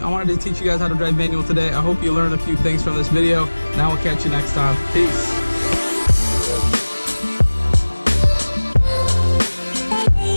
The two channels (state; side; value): inverted; both; correlation -1.00